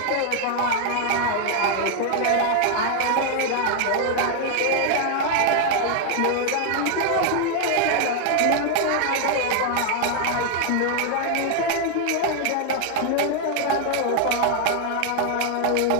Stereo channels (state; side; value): different; both; correlation 0.00